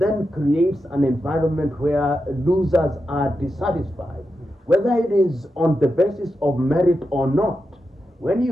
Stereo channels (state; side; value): normal; both; correlation 0.88